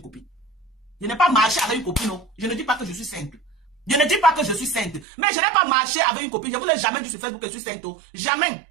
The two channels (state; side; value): drops out; left; at 5.1 s